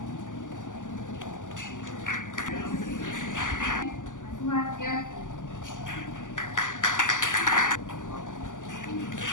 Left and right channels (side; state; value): right; late; 0.87 ms